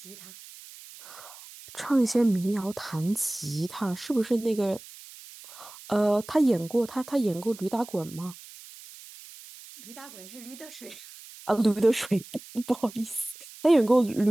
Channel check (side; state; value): right; noise; hiss, 18 dB below the sound